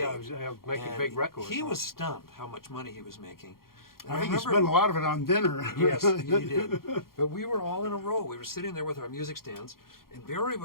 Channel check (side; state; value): right; late; 0.92 ms